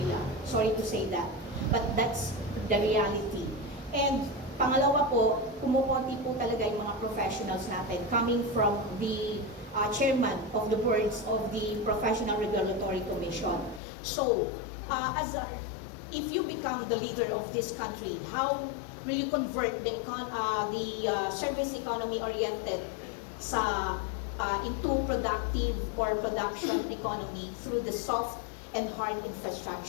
Sorry to say that. But that's the reality. And pangalawa po, kumukonti po talaga yung mga professionals natin coming from the chairman of the boards of the Professional Regulatory Commission. So, if you become the leader of this country, how will you convert the service economy oriented into productive or production economy through the soft and hard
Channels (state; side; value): drops out; right; at 13.8 s